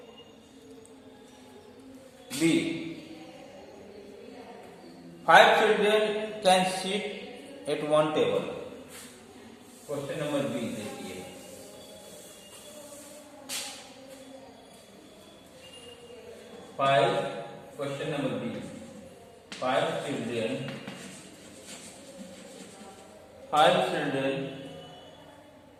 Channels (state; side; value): identical; both; correlation 1.00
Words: B, 5 children can sit at one table. Question number B देखिए. 5 question number B. 5 children